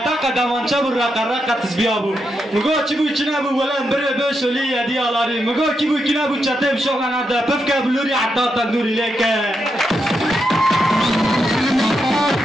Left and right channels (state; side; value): normal; both; correlation 0.83